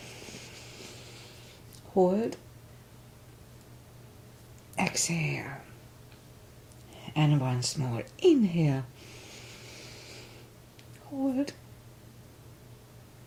Hold. Exhale. And once more. Inhale. Hold.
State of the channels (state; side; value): identical; both; correlation 1.00